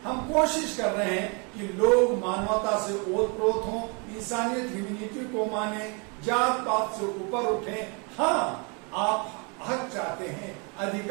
हम कोशिश कर रहे हैं कि लोग मानवता से ओतप्रोत हों, इंसानियत ह्यूमैनिटी को माने, जात पात से ऊपर उठें। हाँ, आप हक चाहते हैं,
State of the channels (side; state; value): left; quieter; 33.4 dB